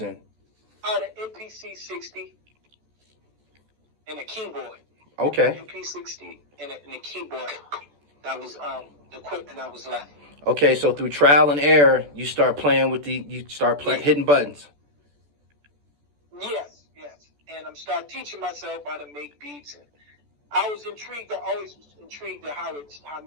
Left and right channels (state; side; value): late; left; 14 ms